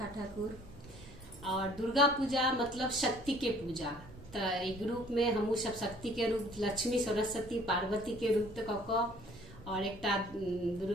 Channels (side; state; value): right; noise; rumble, 19 dB below the sound